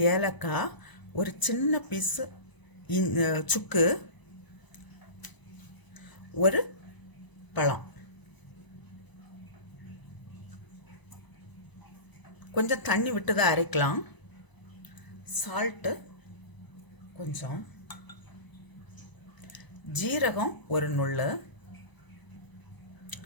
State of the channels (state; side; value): late; right; 1.0 ms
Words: ஏலக்காய், ஒரு சின்ன பீஸு சுக்கு, ஒரு பழம், கொஞ்சம் தண்ணி விட்டு தான் அரைக்கலாம். சால்ட்டு கொஞ்சம், ஜீரகம் ஒரு நுள்ளு,